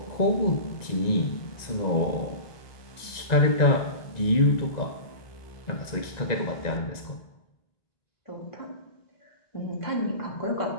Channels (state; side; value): late; right; 1.9 ms